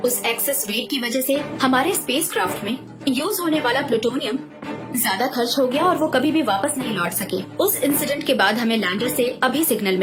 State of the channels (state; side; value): identical; both; correlation 1.00